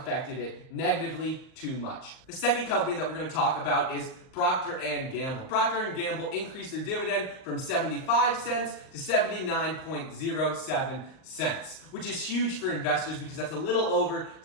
it negatively too much. The second company that we're going to talk about is Procter & Gamble. Procter & Gamble increased their dividend from 75 cents to 79.07 cents, which is huge for investors because that's a little over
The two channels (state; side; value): late; right; 38 ms